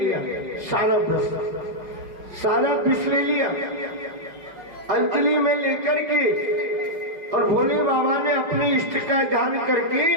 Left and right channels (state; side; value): late; left; 5.3 ms